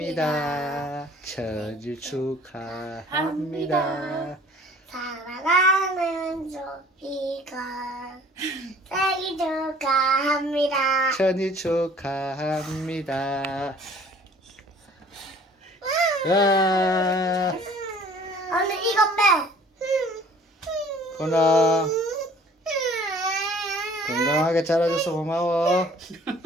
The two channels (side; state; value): both; normal; correlation 0.52